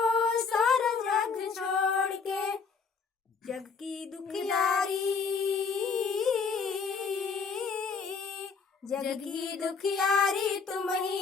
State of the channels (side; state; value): right; quieter; 5.2 dB